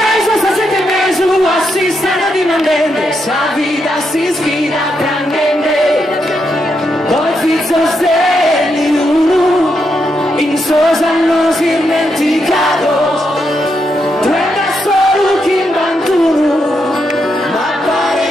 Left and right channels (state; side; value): normal; both; correlation 0.81